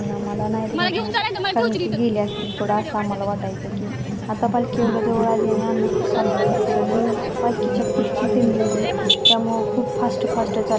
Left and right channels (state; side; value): identical; both; correlation 1.00